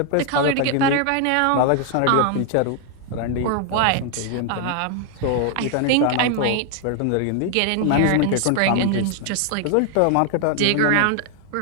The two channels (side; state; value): both; different; correlation 0.00